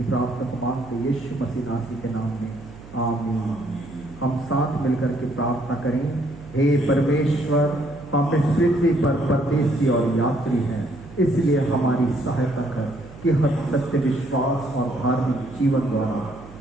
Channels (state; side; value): noise; right; hum, 18 dB below the sound